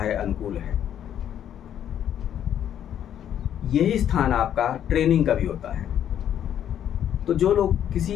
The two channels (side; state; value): right; quieter; 10.1 dB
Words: अनुकूल है। यही स्थान आपका ट्रेनिंग का भी होता है। तो जो लोग